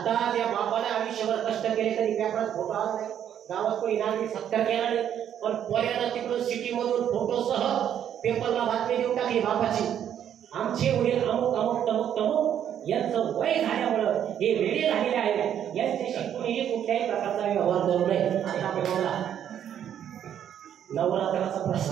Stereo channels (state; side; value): quieter; left; 9.7 dB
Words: त्या बापाने आयुष्यभर कष्ट केले तरी पेपरात फोटो आला नाही, गावात कोणी नागरिक सत्कार केला नाही, पण पोऱ्यानं तिकडून सिटीमधून फोटोसह पेपरला बातमी देऊन टाकली बापाची, आमचे वडील अमुक अमुक तमुक तमुक यांचं वय झाल्यामुळं हे वेळे झालेले आहेत, यांच्याशी कोणीही कुठल्याही प्रकारचा व्यवहार करू नये. आता बघा नवरात्राचा